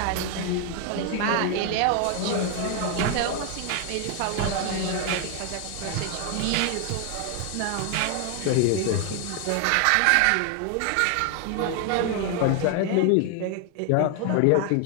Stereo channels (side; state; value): both; different; correlation 0.00